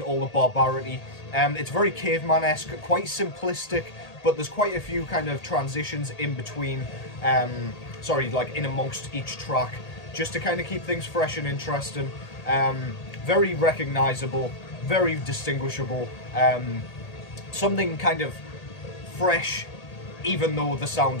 the barbarity. It's very caveman-esque, quite simplistic, but there's quite a few kind of transitions in between, like in amongst each track, just to kind of keep things fresh and interesting. Very recognisable, very distinguishable, something kind of fresh, even though the sound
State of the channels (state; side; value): late; right; 1.8 ms